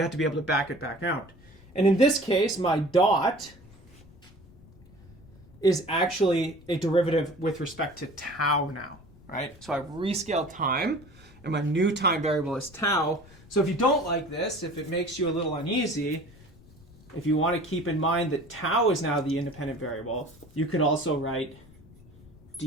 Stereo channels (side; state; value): left; noise; rumble, 24 dB below the sound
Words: have to be able to back it back out. And in this case, my dot is actually a derivative with respect to tau now, right? So I've rescaled time, and my new time variable is tau. So if you don't like this, if it makes you a little uneasy, if you want to keep in mind that tau is now the independent variable, you could also write